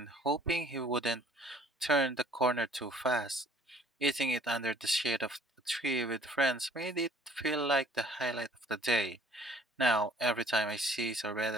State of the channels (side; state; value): both; normal; correlation 0.57